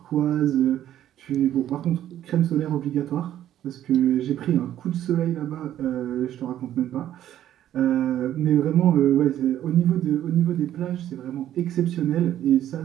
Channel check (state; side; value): quieter; left; 11.8 dB